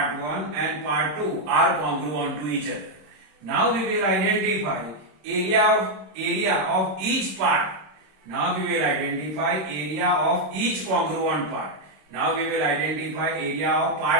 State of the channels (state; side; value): late; left; 26 ms